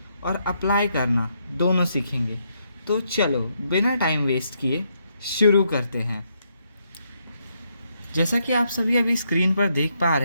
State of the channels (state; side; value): inverted; both; correlation -0.77